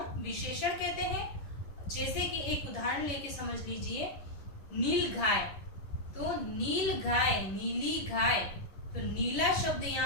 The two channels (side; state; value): right; late; 10 ms